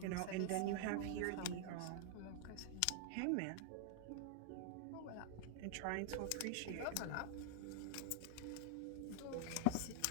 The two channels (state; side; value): different; both; correlation 0.00